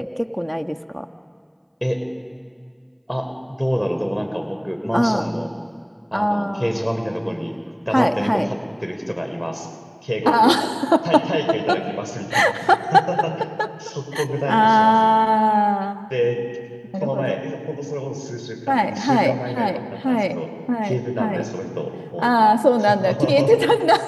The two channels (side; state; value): both; identical; correlation 1.00